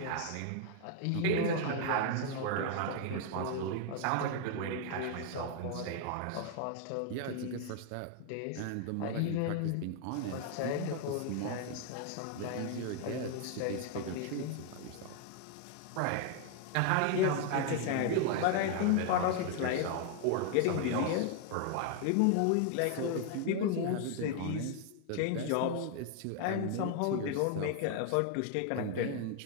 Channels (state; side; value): different; both; correlation 0.00